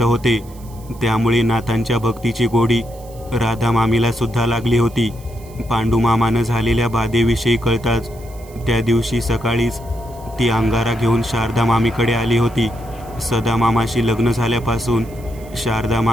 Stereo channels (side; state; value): right; noise; hiss, 24 dB below the sound